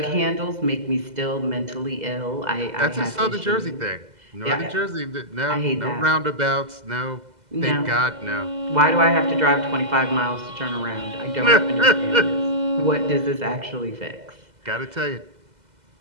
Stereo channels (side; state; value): left; late; 2.0 ms